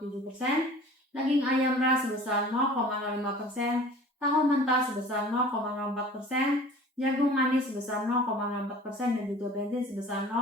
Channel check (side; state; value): both; normal; correlation 0.44